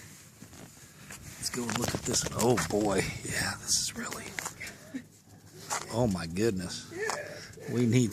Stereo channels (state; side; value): identical; both; correlation 1.00